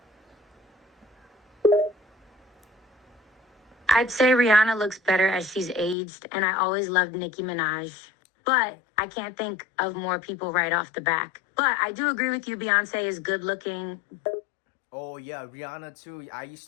I'd say Rihanna looks better as she's aged, and I always loved Nicki Minaj. But I can't think of more people right off the back. But I do agree with you, Beyonce is good looking. Oh yeah, Rihanna too. I used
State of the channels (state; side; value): drops out; right; at 6.0 s